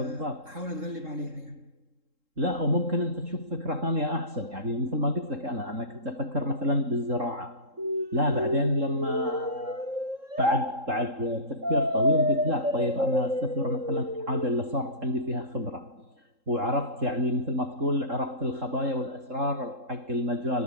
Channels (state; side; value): late; left; 3.7 ms